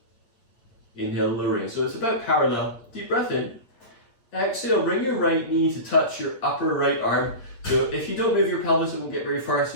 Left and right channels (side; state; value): right; late; 8.6 ms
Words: Inhale, lowering. So it's about parallel. Deep breath in. Exhale, bring your right knee to touch your upper right arm. So if you don't move your pelvis, it won't get very far.